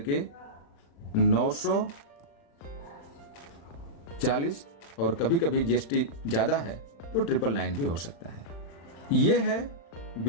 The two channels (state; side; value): late; right; 35 ms